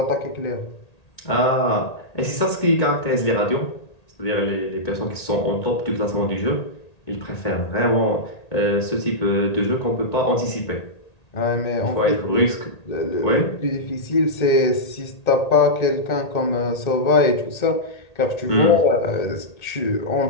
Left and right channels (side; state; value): right; late; 1.8 ms